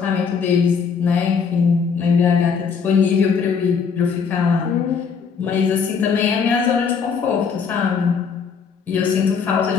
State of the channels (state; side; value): quieter; right; 6.1 dB